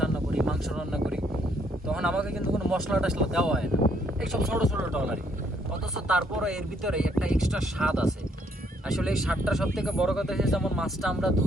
করি, মাংস রান্না করি, তখন আমাকে কিন্তু কোনো মশলা টশলা দেওয়া হয় না এইসব ছোটো ছোটো ট্রলারে। অথচ তারপরে এর ভিতরে একটা এক্সট্রা স্বাদ আছে। আসলে এই স্বাদটা সব থেকে বড় কথা হচ্ছে, যেমন মাছটা আমরা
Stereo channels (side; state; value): both; normal; correlation 0.69